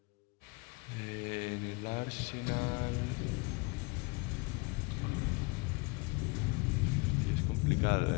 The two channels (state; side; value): quieter; right; 28.3 dB